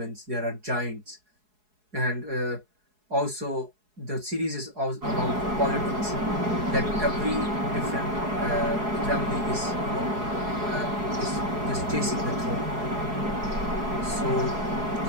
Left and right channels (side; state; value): left; late; 4.7 ms